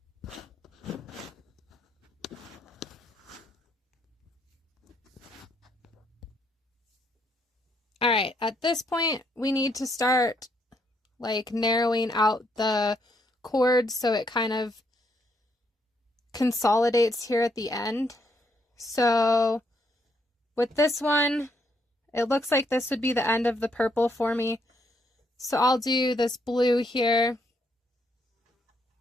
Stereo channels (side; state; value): both; normal; correlation 0.74